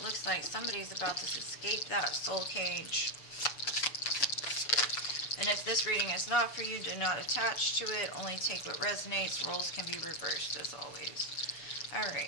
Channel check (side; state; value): right; late; 6.9 ms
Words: looks like somebody's about to escape that soul cage. And if this reading is not for you, do not attach to it. Only take what resonates. Roles can be reversed, as always.